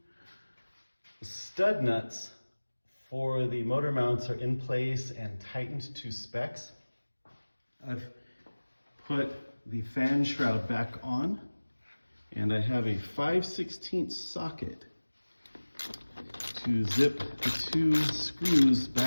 stud nuts for the motor mounts are in place and tightened to specs, I've put the fan shroud back on, and I have a 5/16 socket to zip the two screws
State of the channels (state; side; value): inverted; both; correlation -1.00